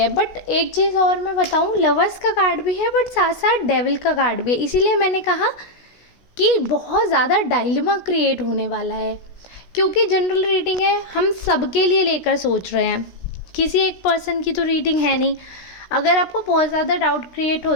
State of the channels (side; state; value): right; late; 16 ms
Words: बट एक चीज़ और मैं बताऊं, लवर्स का कार्ड भी है बट साथ साथ डेविल का कार्ड भी है। इसीलिए मैंने कहा कि बहुत ज़्यादा डायलेमा क्रिएट होने वाला है, क्योंकि जनरल रीडिंग है, हम सबके लिए लेकर सोच रहे हैं, किसी एक पर्सन की तो रीडिंग है नहीं। अगर आपको बहुत ज़्यादा डाउट क्रिएट